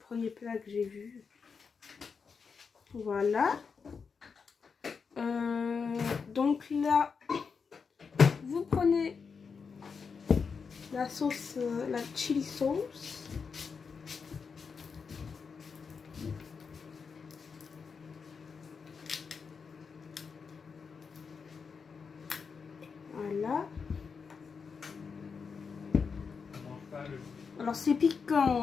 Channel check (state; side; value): quieter; right; 5.6 dB